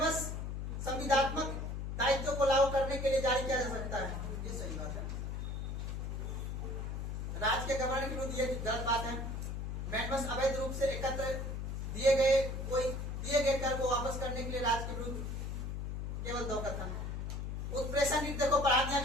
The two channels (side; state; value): left; noise; hum, 4 dB below the sound